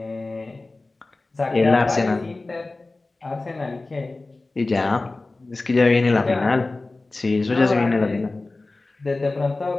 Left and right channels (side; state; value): right; quieter; 3.2 dB